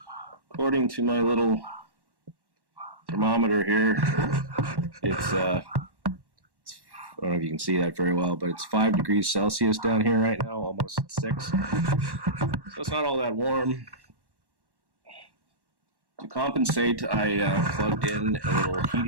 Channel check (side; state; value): left; late; 1.1 ms